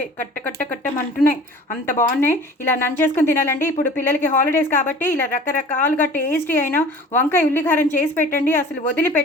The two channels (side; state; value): both; normal; correlation 0.44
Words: కట్ట కట్ట కట్టమంటున్నాయి, అంత బాగున్నాయి. ఇలా నంచేసుకుని తినాలండి. ఇప్పుడు పిల్లలకి హాలిడేస్ కాబట్టి ఇలా రకరకాలుగా టేస్టీ అయిన వంకాయ ఉల్లికారం చేసి పెట్టండి, అసలు